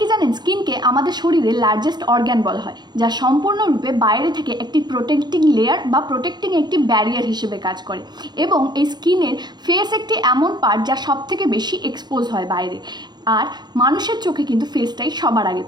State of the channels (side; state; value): left; late; 0.21 ms